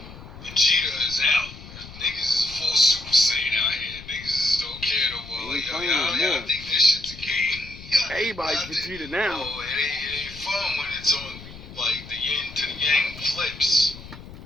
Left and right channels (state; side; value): noise; left; rumble, 16 dB below the sound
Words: Vegeta is out. Niggas is full Super Saiyan out here. Niggas just don't care no more. Like, yo, y'all think this shit's a game. Everybody's Vegeta now. Oh, it ain't fun when it's on, like, the yin to the yang flips.